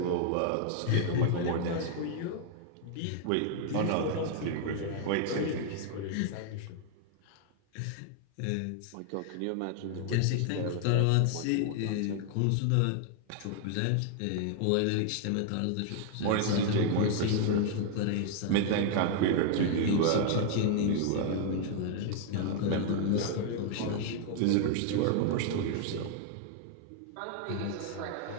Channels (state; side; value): different; both; correlation 0.00